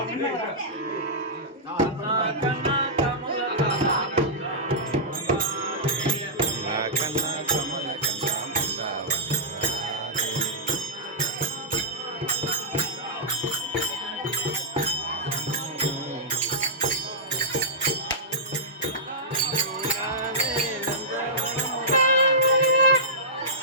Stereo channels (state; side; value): normal; both; correlation -0.14